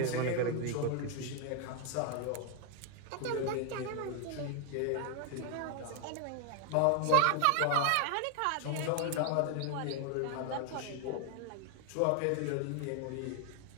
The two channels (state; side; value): different; both; correlation 0.01